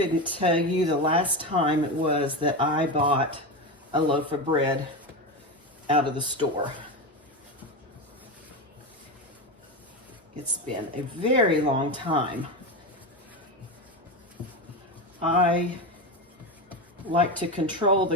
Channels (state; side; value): normal; both; correlation 0.18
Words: tell you the last time it was that I bought a loaf of bread out of the store. It's been a very long time. I like to control